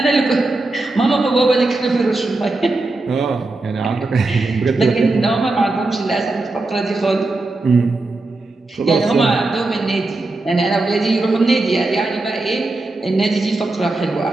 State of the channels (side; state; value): left; quieter; 3.1 dB